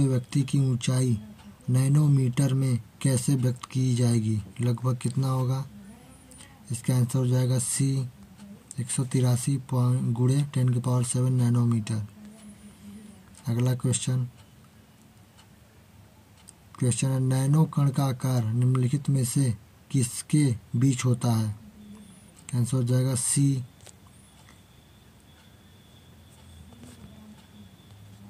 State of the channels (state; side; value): identical; both; correlation 1.00